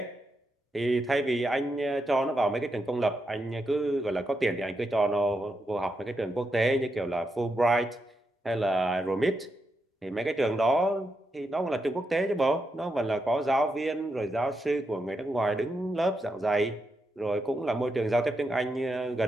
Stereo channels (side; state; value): both; normal; correlation 0.84